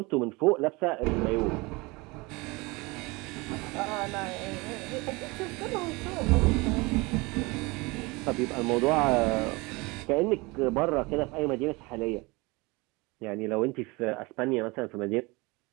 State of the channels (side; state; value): left; quieter; 24.8 dB